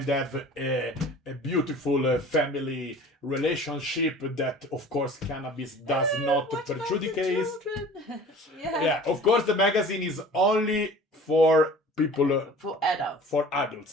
have a beautiful family relationship that, of course, cannabis does not prejudicate. Yeah, of course, the magazine is only for people, for adults. For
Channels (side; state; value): both; normal; correlation 0.44